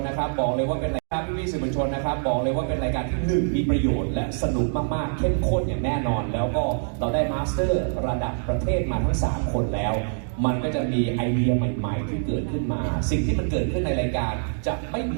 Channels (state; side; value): silent; left; digital silence